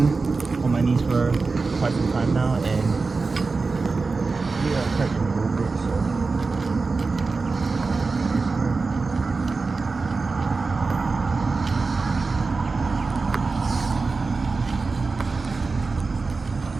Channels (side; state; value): left; quieter; 4.1 dB